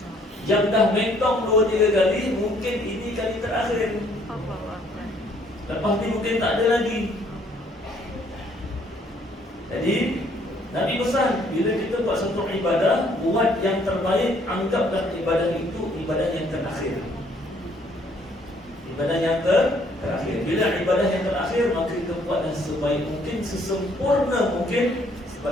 Yang dah mentong 2-3 kali, mungkin ini kali terakhir. Lepas ni mungkin tak ada lagi. Jadi Nabi pesan, bila kita buat satu ibadah, buat yang terbaik. Anggaplah ibadah itu ibadah yang terakhir. Ibadah yang terakhir. Bila ibadah yang terakhir, maka kita buatlah sebaik mungkin, sesempurna mungkin.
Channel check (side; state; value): both; normal; correlation 0.64